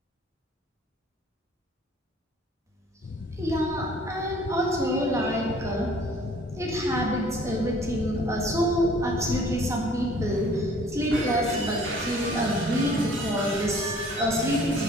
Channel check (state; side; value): normal; both; correlation 0.54